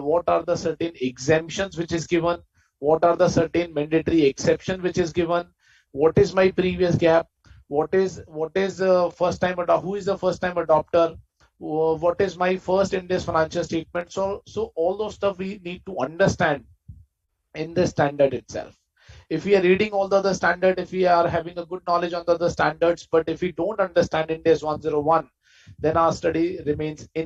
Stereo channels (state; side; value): identical; both; correlation 1.00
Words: are the certain exemptions which is given, what are the certain mandatory exception which is given, what is my previous gap, what is first time who is the first time adopter, what is my first in this financial statement. So all those stuff we need to understand in the standard itself. If we are reading all the other standard, if we are having a good knowledge on the other standards, but if we don't understand Ndas 101, then our study remains